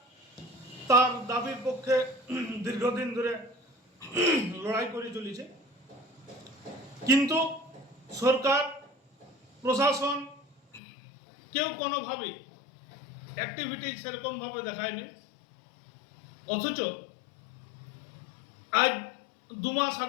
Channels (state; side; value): drops out; right; at 10.8 s